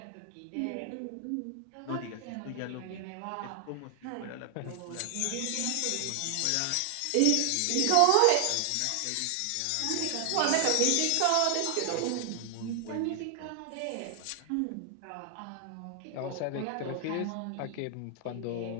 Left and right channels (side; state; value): both; different; correlation 0.00